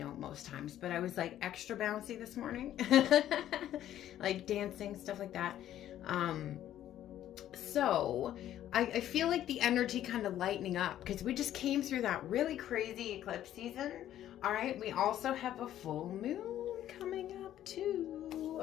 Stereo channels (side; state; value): right; quieter; 12.0 dB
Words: most times, but I was like extra bouncy this morning. Like dancing, stuff like that. So I feel like the energy kind of lightening up because we just came through that really crazy eclipse season. All right, we also have a full moon coming up too.